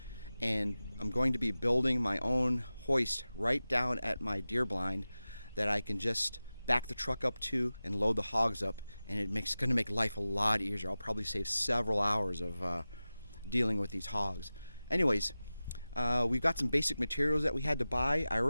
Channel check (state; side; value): inverted; both; correlation -0.96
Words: and I'm going to be building my own hoist right down at my deer blind that I can just back the truck up to and load the hogs up, and it's going to make life a lot easier. I'll probably save several hours of dealing with these hogs. Anyways, we've got some basic materials that we had to buy. I